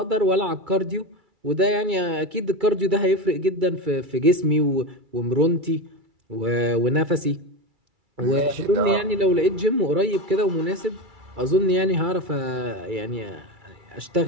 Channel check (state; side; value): late; left; 2.3 ms